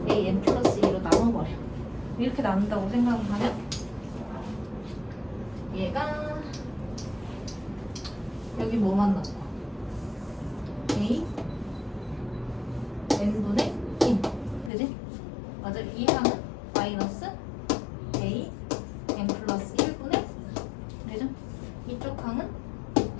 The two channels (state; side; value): drops out; right; at 14.7 s